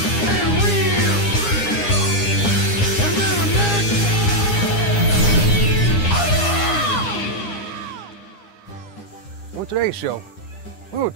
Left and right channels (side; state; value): right; late; 9.8 ms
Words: And real American! On today's show, we will